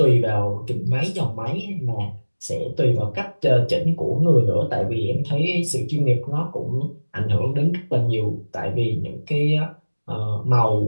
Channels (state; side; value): inverted; both; correlation -1.00